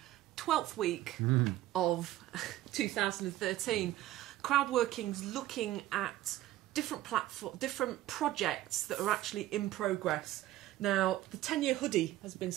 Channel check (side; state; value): left; quieter; 15.0 dB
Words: 12th week of 2013. Crowdworking's looking at different projects that are actually in progress. Now, the 10-year hoodie has been